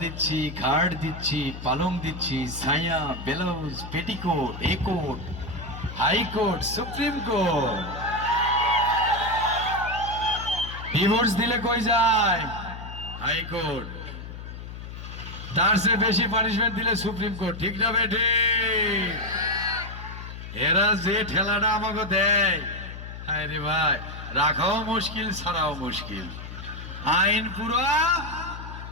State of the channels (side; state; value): left; noise; hum, 10 dB below the sound